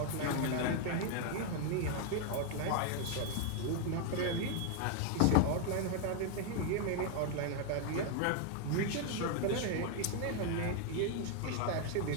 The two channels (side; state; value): both; different; correlation 0.00